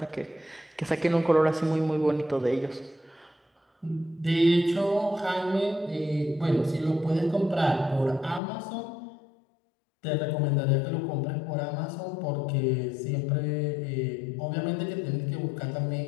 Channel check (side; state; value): right; drops out; at 8.4 s